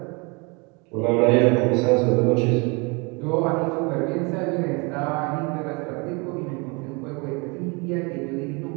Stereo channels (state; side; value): quieter; left; 29.5 dB